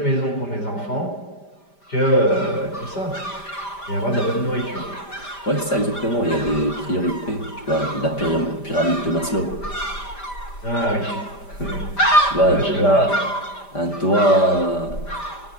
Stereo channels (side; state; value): right; late; 5.0 ms